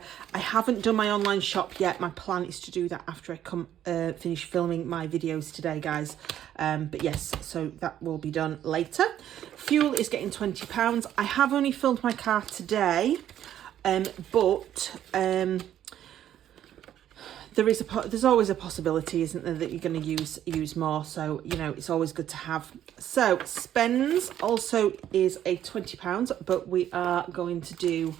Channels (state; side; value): quieter; left; 11.1 dB